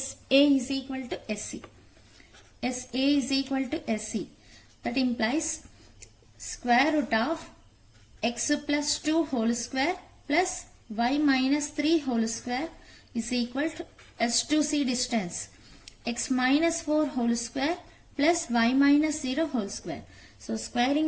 is equal to SC. SA is equal to SC. That implies square root of x plus 2 whole square plus y minus 3 whole square is equal to S to C distance, x minus 4 whole square plus y minus 0 whole square. So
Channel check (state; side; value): identical; both; correlation 1.00